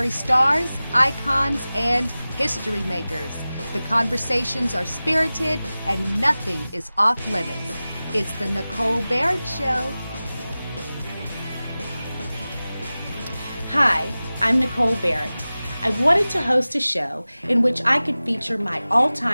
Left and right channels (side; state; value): both; inverted; correlation -0.97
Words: stars, icons, and history makers. The conversations are spirited and nothing is off limits. It's the Nicole Barrett Show. Hi, I'm Nicole Barrett. I wanted to host a show in which I could feature my